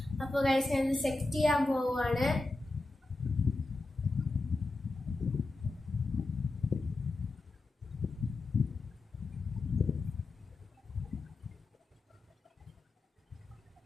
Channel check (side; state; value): right; quieter; 3.1 dB